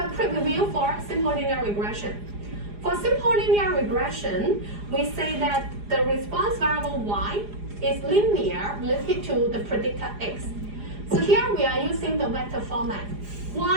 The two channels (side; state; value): left; late; 4.9 ms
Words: quick review for simple linear regression. For simple linear regression, we say that the response variable Y is linear related to the predictor X. So here we are using the vector format.